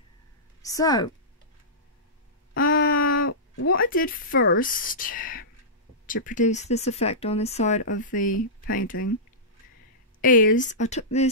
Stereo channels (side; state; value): both; normal; correlation -0.17